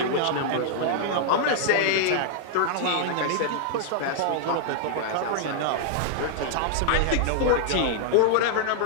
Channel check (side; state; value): both; different; correlation -0.01